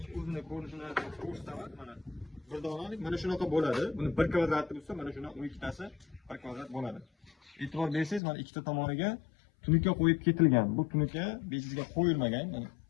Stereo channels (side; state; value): right; drops out; at 8.2 s